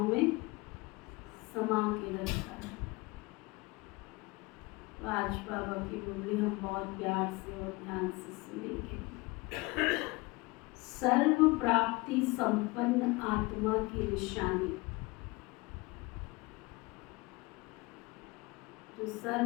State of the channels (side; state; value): right; quieter; 24.0 dB